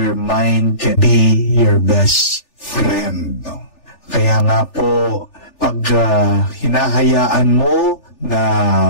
mind can be your best friend. Kaya nga po, pag hinahayaan mo na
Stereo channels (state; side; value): late; right; 3.4 ms